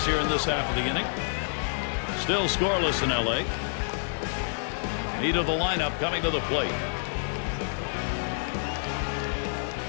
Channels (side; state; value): right; silent; 59 dB below the other